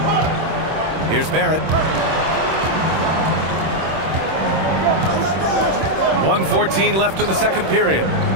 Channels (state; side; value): late; left; 26 ms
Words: Here's Barrett. 1:14 left in the second period.